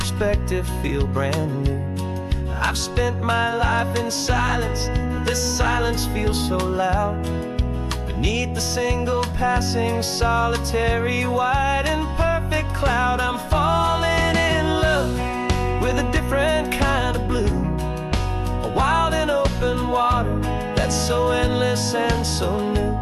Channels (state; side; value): identical; both; correlation 1.00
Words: feel brand new. I've spent my life in silence, this silence feels so loud. Beneath the single passing solitary white and perfect cloud, I'm falling in love with a different kind of blue, a wild and open water that's so endless and so new.